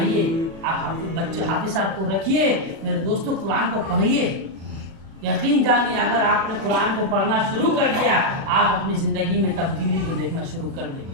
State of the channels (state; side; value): late; left; 36 ms